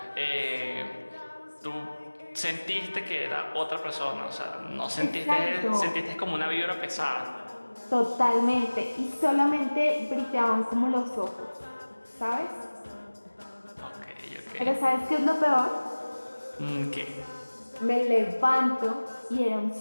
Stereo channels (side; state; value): both; inverted; correlation -1.00